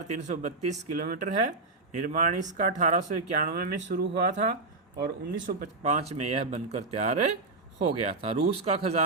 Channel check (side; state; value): left; quieter; 3.6 dB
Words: किलोमीटर है। निर्माण इसका 1891 में शुरू हुआ था और 1905 में यह बनकर तैयार हो गया था। रूस का